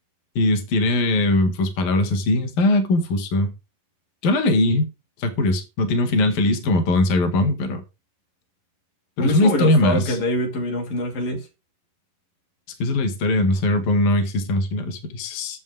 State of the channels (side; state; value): right; late; 11 ms